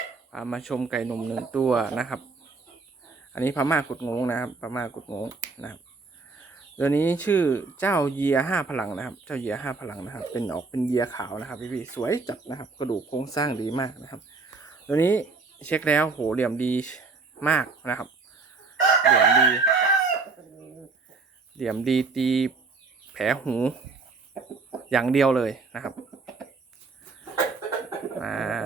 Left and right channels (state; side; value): quieter; left; 4.2 dB